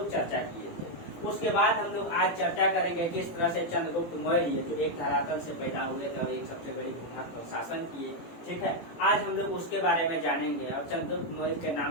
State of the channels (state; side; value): late; right; 18 ms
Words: चर्चा किए थे। उसके बाद हम लोग आज चर्चा करेंगे किस तरह से चंद्रगुप्त मौर्य जो एक धरातल से पैदा हुए थे और एक सबसे बड़े भूभाग पर शासन किए। ठीक है, आज हम लोग उसके बारे में जानेंगे। और चंद्रगुप्त मौर्य के